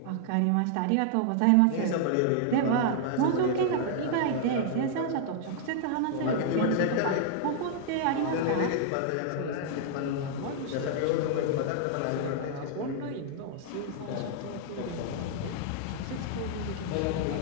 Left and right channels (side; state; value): both; different; correlation -0.01